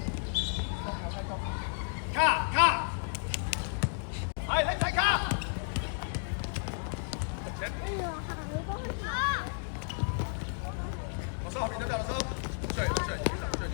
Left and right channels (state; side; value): silent; right; digital silence